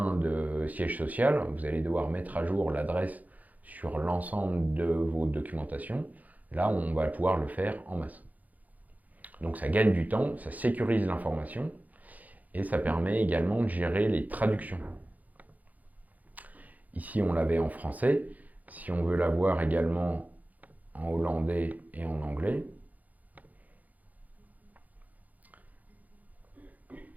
de siège social, vous allez devoir mettre à jour l'adresse sur l'ensemble de vos documentations. Là, on va pouvoir le faire en masse. Donc ça gagne du temps, ça sécurise l'information et ça permet également de gérer les traductions. Ici, on l'avait en français. Si on veut l'avoir également en hollandais et en anglais,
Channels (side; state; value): left; late; 0.079 ms